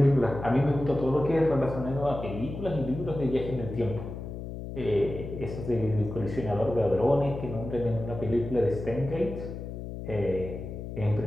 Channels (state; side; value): noise; left; hum, 8 dB below the sound